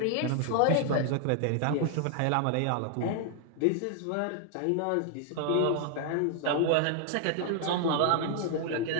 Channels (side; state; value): both; different; correlation 0.00